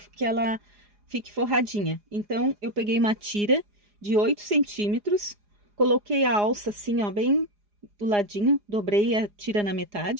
que ela fique forradinha. Então, eu peguei uma tira de 8 centímetros, coloquei a alça assim, ó, bem do ladinho, dobrei a tira na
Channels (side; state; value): left; late; 4.9 ms